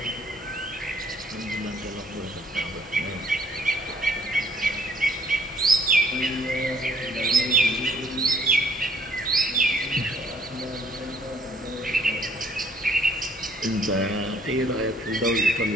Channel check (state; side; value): normal; both; correlation 0.63